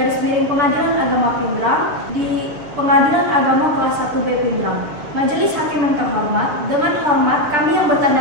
Pengadilan Agama Pindrang di Pengadilan Agama Kelas 1B Pindrang. Majelis Hakim yang terhormat, dengan hormat kami yang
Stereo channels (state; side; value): late; left; 7.0 ms